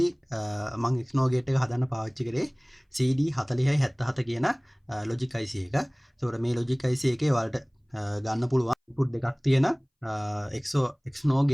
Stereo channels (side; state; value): both; identical; correlation 1.00